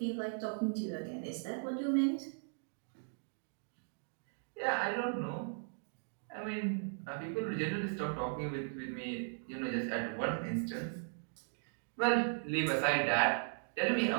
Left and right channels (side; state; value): left; silent; digital silence